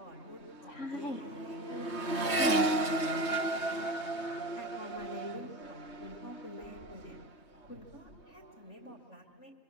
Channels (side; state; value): right; late; 3.2 ms